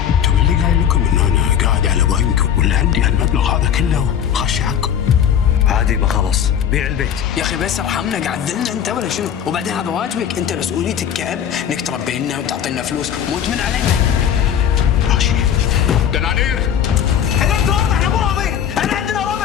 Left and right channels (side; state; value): right; quieter; 9.0 dB